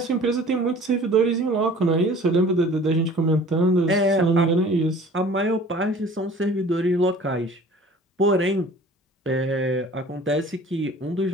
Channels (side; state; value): both; normal; correlation 0.47